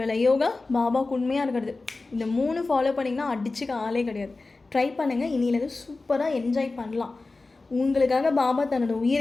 வேலை யோகா, பாபாவுக்கு உண்மையாக இருக்கிறது, இந்த 3 ஃபாலோ பண்ணிங்கன்னா அடிச்சுக்க ஆளே கிடையாது. ட்ரை பண்ணுங்கள். இனியிலேருந்து சூப்பராக என்ஜாய் பண்ணலாம். உங்களுக்காக பாபா தன்னோட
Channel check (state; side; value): quieter; right; 3.5 dB